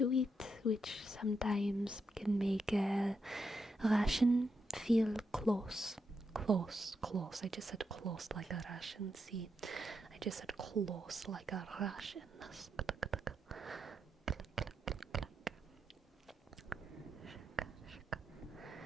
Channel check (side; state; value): both; normal; correlation 0.83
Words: it, which sometimes can make a Russian feel close. I just said close like a Russian. See, I just said close like a Russian.